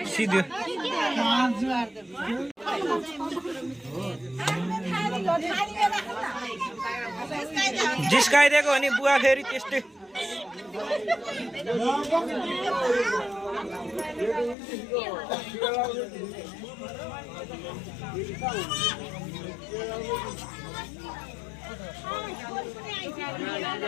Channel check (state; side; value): drops out; right; at 14.6 s